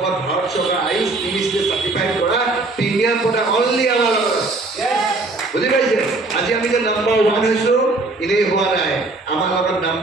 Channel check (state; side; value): quieter; left; 3.2 dB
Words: ভাৰত চৰকাৰ আয়ুষ মিনিষ্ট্ৰীয়ে চাৰ্টিফাইড কৰা প্ৰিমিয়াম প্ৰডাক্ট অনলি আমাৰ লগত বুজি পাইছে আজি আমি যে নম্বৰ 1 হৈছোঁ এনেই হোৱা নাই আমাৰ লগত